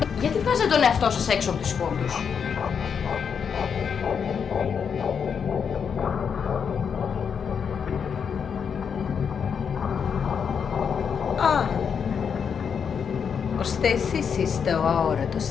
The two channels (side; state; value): right; quieter; 6.9 dB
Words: Γιατί βγάζετε τον εαυτό σας έξω από τις πόντους? Ώστε εσείς είστε ο αόρατος